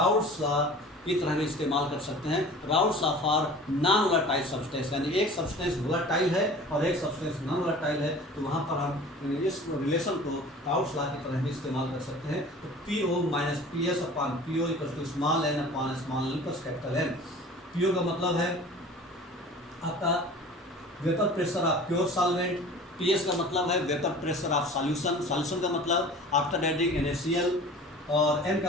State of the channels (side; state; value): both; normal; correlation 0.42